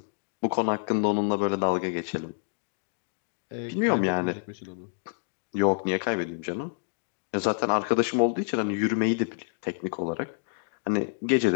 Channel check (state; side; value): silent; right; digital silence